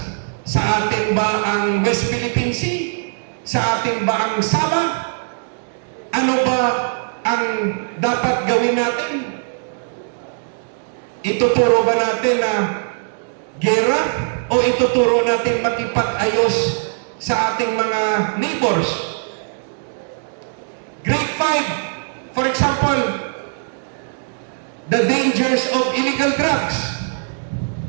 Sa atin ba ang West Philippine Sea? Sa atin ba ang Sabah? Ano ba ang dapat gawin natin? Ituturo ba natin na gera o ituturo natin makipag-ayos sa ating mga neighbors? Grade 5, for example, the dangers of illegal drugs.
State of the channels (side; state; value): left; silent; digital silence